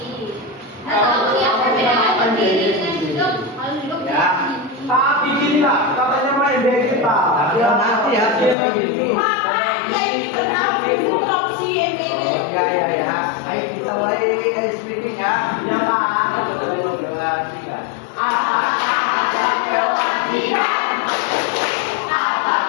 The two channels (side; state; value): right; drops out; at 8.6 s